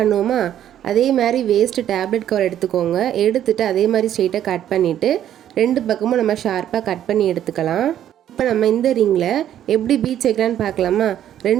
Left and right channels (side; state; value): left; quieter; 11.0 dB